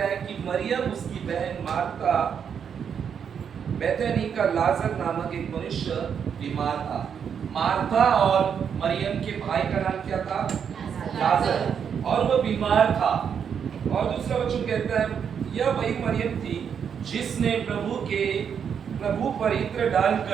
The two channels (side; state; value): left; quieter; 7.5 dB